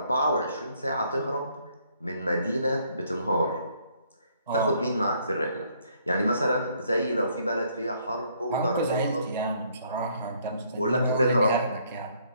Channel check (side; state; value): both; inverted; correlation -0.67